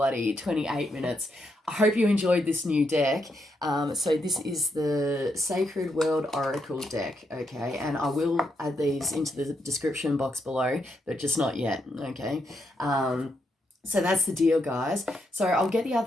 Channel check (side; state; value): both; normal; correlation 0.80